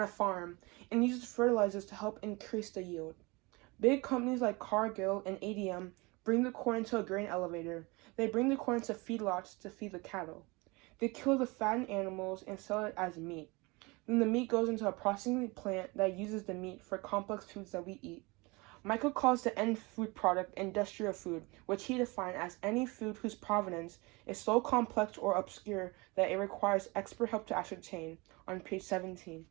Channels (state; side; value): quieter; left; 25.6 dB